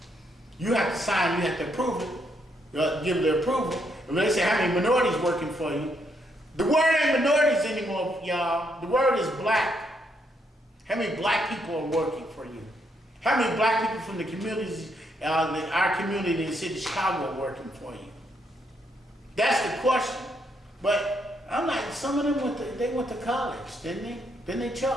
You have to sign, you have to approve it, give the approval. And when they say how many minorities working for you, the word ain't minorities anymore, y'all. The word is black. How many black people are working for you? How many black people from the communities, our community in the city of Chicago are working for you? That's the question. But I'm like, some of them went to college, didn't they? Didn't they,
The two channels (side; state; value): both; normal; correlation 0.76